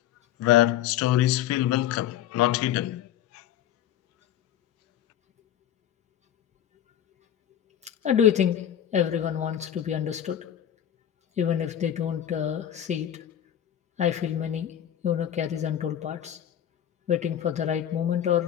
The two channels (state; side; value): quieter; right; 10.7 dB